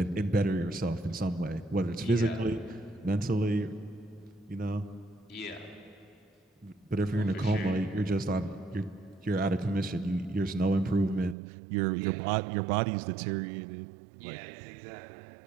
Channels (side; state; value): left; drops out; at 11.4 s